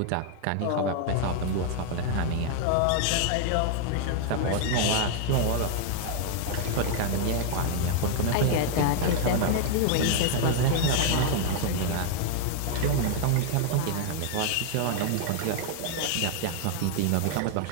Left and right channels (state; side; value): different; both; correlation 0.00